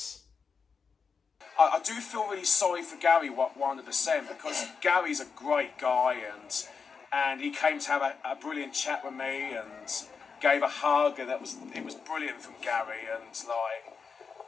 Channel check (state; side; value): quieter; right; 5.5 dB